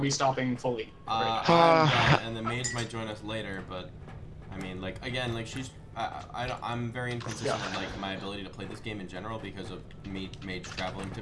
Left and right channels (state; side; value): identical; both; correlation 1.00